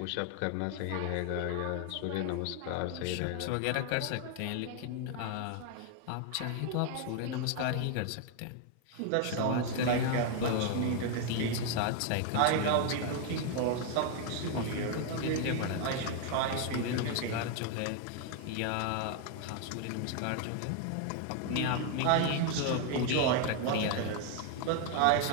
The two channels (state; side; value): different; both; correlation 0.00